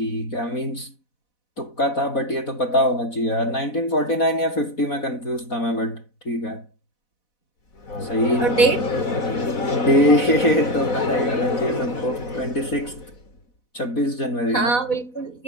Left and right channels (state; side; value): late; right; 4.1 ms